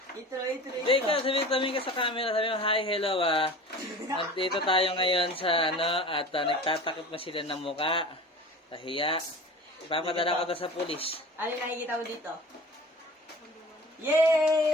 Intro. Hindi ka, sabi ka sa camera, sabi mo, hi, hello Nandito tayo ngayon sa at nagtatakip na sila ng muka. Kahiya. Ipapadala ko to sa pulis. Ano yung nakikita mo dito?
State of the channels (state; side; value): normal; both; correlation 0.38